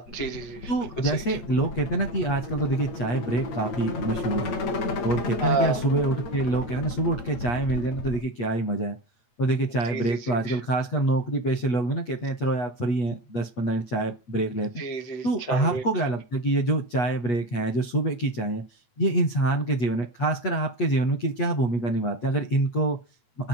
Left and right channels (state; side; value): late; right; 8.3 ms